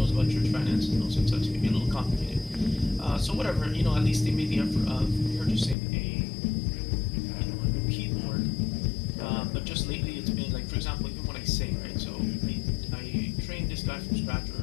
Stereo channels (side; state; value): right; drops out; at 5.8 s